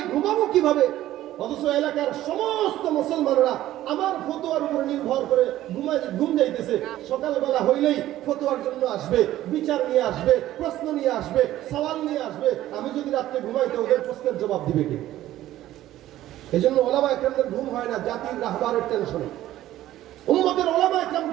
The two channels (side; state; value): left; quieter; 14.1 dB